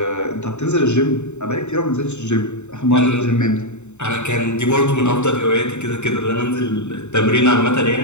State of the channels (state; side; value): late; right; 0.83 ms